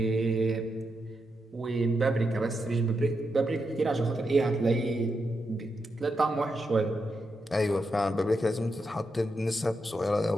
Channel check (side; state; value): both; normal; correlation 0.85